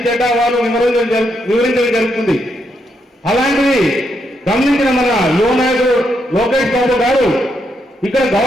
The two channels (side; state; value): both; normal; correlation 0.79